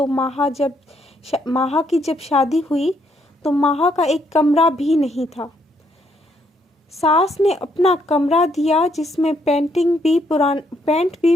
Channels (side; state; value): both; normal; correlation 0.73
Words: माहा की जब शादी हुई तो माहा का एक कमरा भी नहीं था। सास ने अपना कमरा दिया जिसमें पेंट भी